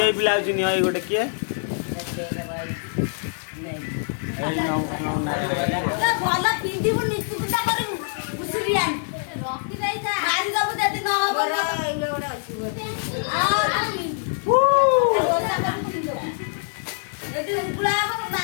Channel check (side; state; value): right; silent; 62 dB below the other